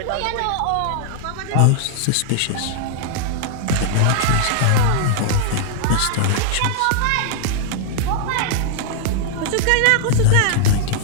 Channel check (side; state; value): both; different; correlation -0.01